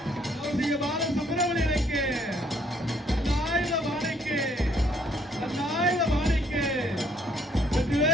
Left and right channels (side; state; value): both; normal; correlation 0.66